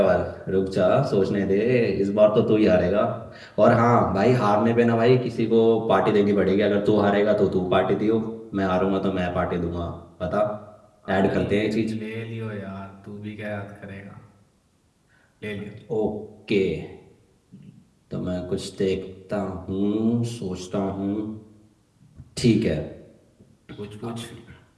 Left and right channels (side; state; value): both; identical; correlation 1.00